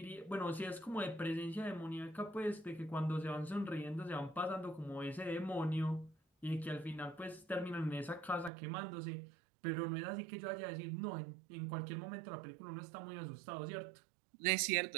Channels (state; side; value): drops out; left; at 8.5 s